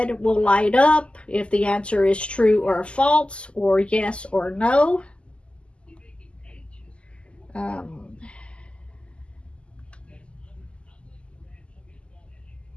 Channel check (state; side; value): late; right; 0.054 ms